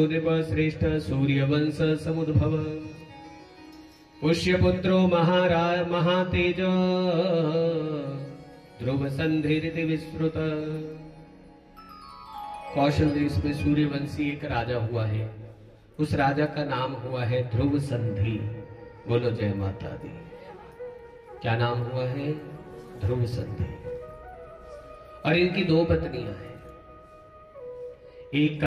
नृपश्रेष्ठ सूर्यवंश समुद्भव पुष्यपुत्रो महातेज ध्रुव संधिरिति विश्रुत। कौशल देश में सूर्यवंशी एक राजा हुआ है, उस राजा का नाम हुआ है ध्रुव संधि। बोलो जय माता दी। क्या नाम हुआ है? ध्रुव संधि। और इनकी दो पत्नियां हैं, एक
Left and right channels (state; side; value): identical; both; correlation 1.00